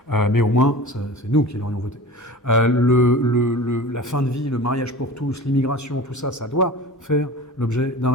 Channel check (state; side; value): normal; both; correlation 0.37